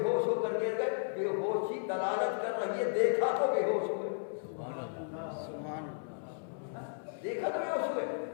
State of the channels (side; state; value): right; silent; 55 dB below the other